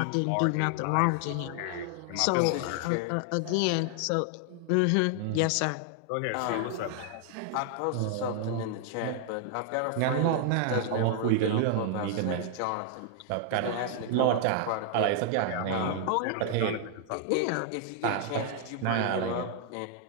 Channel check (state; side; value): different; both; correlation 0.00